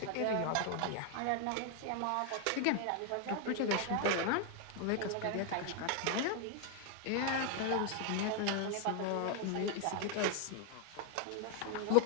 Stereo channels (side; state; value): both; different; correlation 0.00